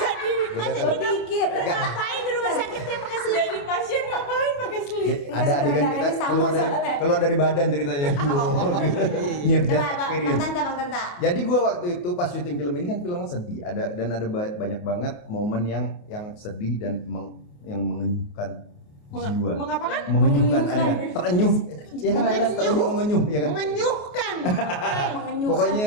di Beda film. Dikit. Nggak. ngapain di rumah sakit dia pakai selimut? Jadi pasien ngapain pakai selimut? Ada adegan kita keluar dari badan ceritanya. Near death experience. Bang Tanta. Jadi gua waktu itu pas syuting film ini kan filmnya sedih, ada banyak banget momen yang sedih dan yang mengenyuhkan jiwa. Mengapakan? Mengenyuhkan ada kan? Terenyuh. Ya kan ada kan terenyuh mengenyuh ya kan? Mengenyuhkan. Pokoknya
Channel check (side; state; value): right; late; 28 ms